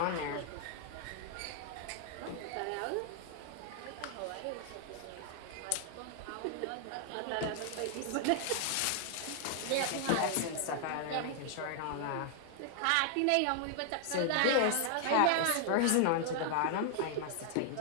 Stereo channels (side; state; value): both; different; correlation 0.00